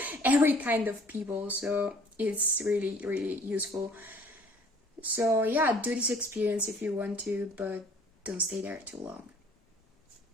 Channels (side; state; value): both; normal; correlation 0.54